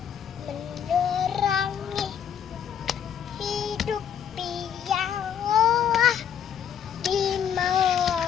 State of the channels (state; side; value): quieter; right; 8.6 dB